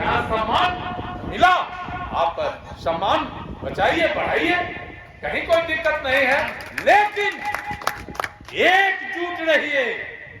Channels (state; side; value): identical; both; correlation 1.00